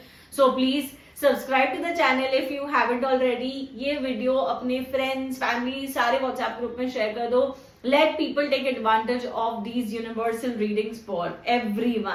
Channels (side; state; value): both; identical; correlation 1.00